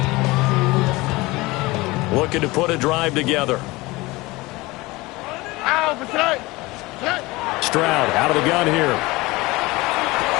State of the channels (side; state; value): right; quieter; 21.7 dB